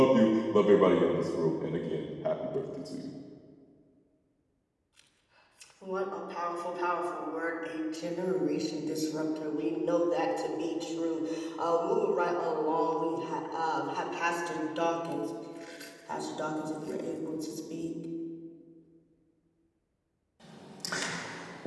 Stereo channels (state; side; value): identical; both; correlation 1.00